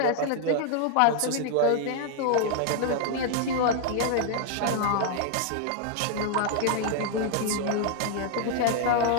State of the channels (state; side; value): different; both; correlation 0.00